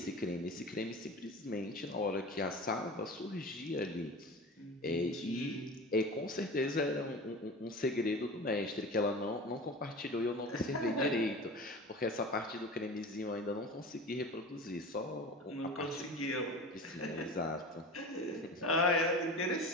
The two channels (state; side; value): normal; both; correlation 0.34